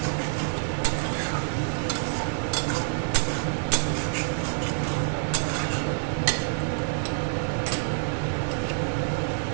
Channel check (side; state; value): left; silent; digital silence